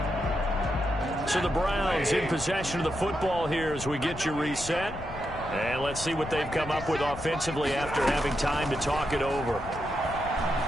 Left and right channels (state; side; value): noise; left; rumble, 12 dB below the sound